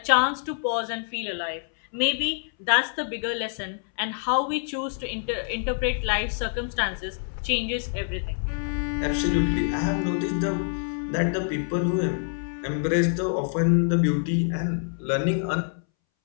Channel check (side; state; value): right; silent; 61 dB below the other